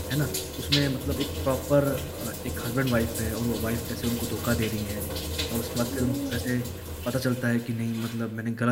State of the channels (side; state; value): both; identical; correlation 1.00